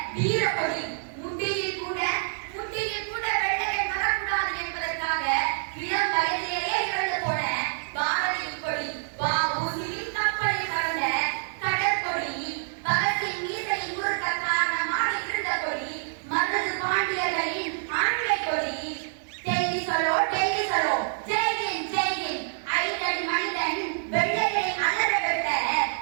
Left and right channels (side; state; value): left; silent; 59 dB below the other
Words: வீரக்கொடி. முட்டியில் கூட வெள்ளையன் வரக்கூடாது என்பதற்காக இளம் வயதிலேயே இறந்து போன பாரதியின் கொடி. வ.உ.சி.யின் கப்பலில் கலந்த கடற்கொடி. பகத்தின் மீசையில் முறுக்க காரணமாக இருந்த கொடி. மருது பாண்டியர்களின் ஆண்மை கொடி. டெல்லி சலோ ஜெய்ஹிந்த் ஐந்தடி மனிதன் வெள்ளையை அலற விட்ட